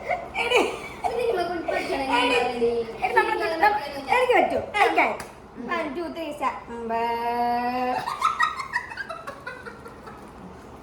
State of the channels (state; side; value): identical; both; correlation 1.00